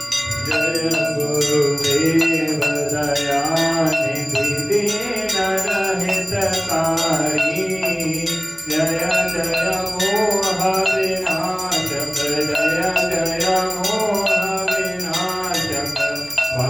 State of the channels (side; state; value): both; identical; correlation 1.00